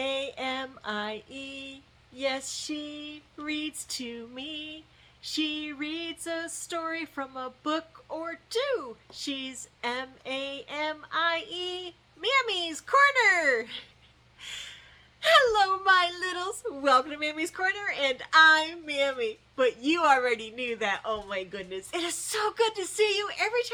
Yes, she reads to me. She reads a story from a book or two. She's Mamie. Mammy's Corner. Hello, my littles. Welcome to Mammy's Corner, and I'm Mammy. But you already knew that. Oh my goodness. It is so good to see you. Every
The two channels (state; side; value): identical; both; correlation 1.00